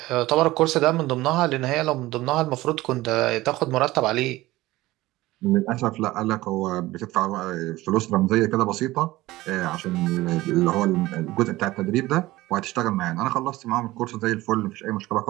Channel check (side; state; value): left; quieter; 18.1 dB